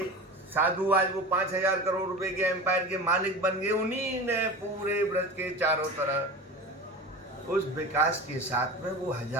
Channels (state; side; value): normal; both; correlation 0.31